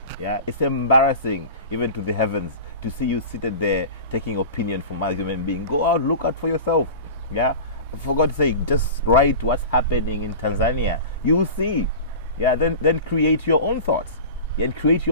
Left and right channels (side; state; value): both; inverted; correlation -0.33